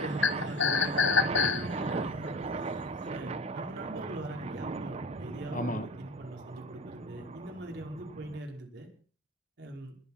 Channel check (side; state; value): both; normal; correlation 0.34